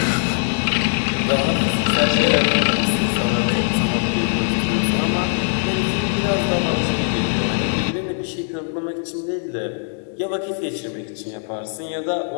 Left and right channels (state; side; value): silent; right; 65 dB below the other